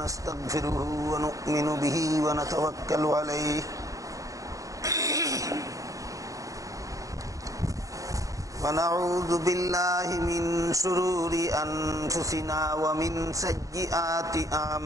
ونؤمن به ونتوكل عليه ونعوذ بالله من شرور أنفسنا ومن سيئات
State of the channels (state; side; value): late; left; 0.16 ms